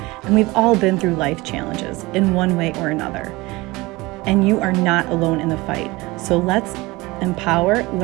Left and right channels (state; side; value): quieter; left; 22.0 dB